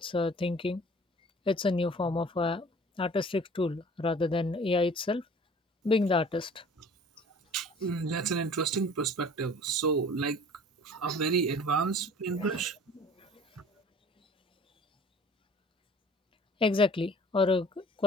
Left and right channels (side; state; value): both; normal; correlation 0.48